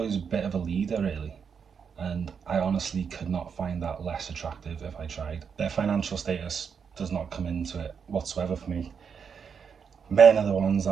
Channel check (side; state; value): left; quieter; 6.6 dB